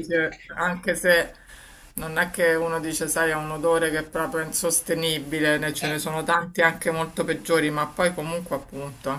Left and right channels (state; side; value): identical; both; correlation 1.00